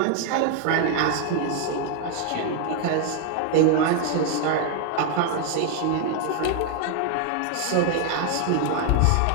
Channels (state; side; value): different; both; correlation 0.00